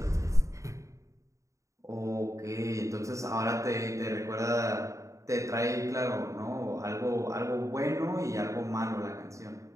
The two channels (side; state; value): left; late; 0.15 ms